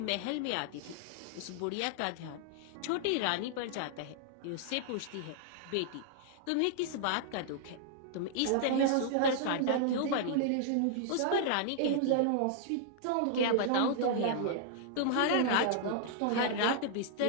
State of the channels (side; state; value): both; different; correlation -0.01